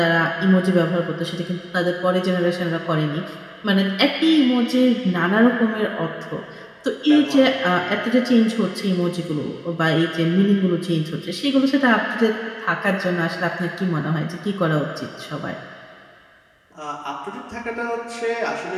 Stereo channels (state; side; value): identical; both; correlation 1.00